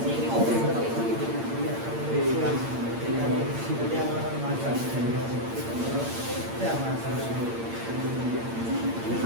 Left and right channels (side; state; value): left; late; 8.7 ms